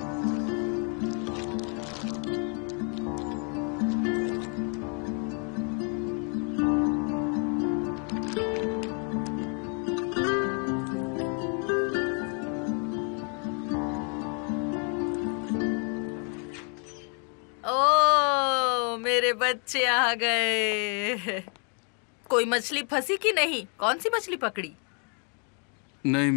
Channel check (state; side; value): quieter; right; 39.2 dB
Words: मेरे बच्चे आ गए। कोई मछली फंसी कि नहीं? कौन सी मछली पकड़ी? नहीं